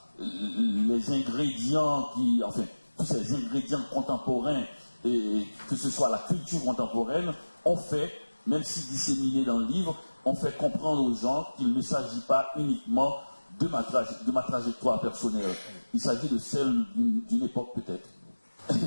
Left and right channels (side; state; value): both; inverted; correlation -1.00